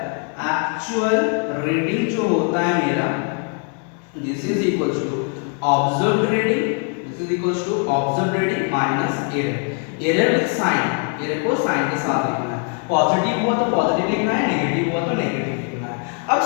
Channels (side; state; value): right; quieter; 38.8 dB